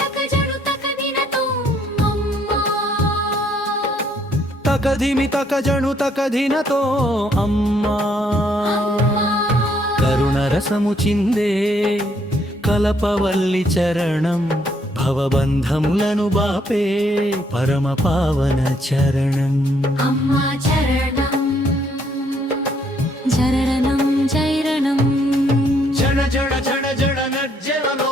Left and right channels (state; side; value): normal; both; correlation 0.69